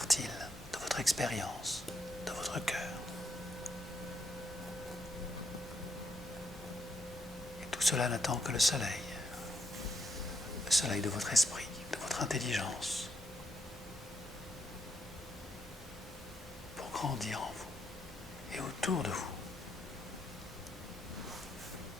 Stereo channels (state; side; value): normal; both; correlation 0.76